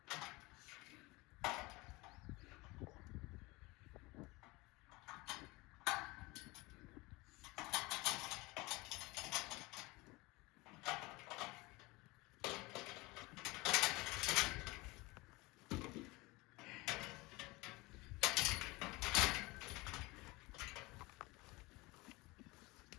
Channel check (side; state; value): right; quieter; 23.1 dB